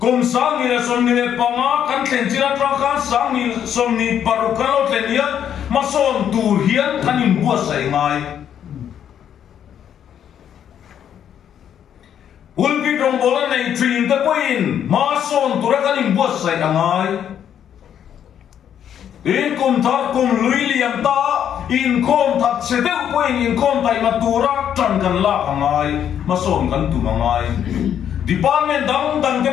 sáng ni là sồn ni banga cắn tiền chi là trang khăn sáng ni sồn ni paru cắn lót tiền nhá mà sồn tu hiến cắn in bua say ngay ulpi trong bola này truyền tới quên mà son tụi nó cái niềm buốt say đằng ai in cùng thắt cùng lưỡi liềm ta in com thắt sẽ đeo quên in com tay mà tụi nó chẳng cần la đằng ai mà son cần tụi đằng ai department đằng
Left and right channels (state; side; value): quieter; right; 9.4 dB